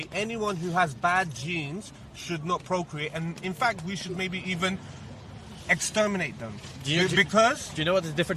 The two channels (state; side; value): identical; both; correlation 1.00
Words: anyone who has bad genes should not procreate, and in fact we should maybe even exterminate them. Do you know what the